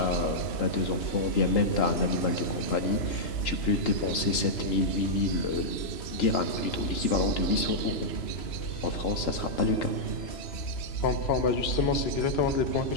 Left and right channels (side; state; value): right; late; 3.0 ms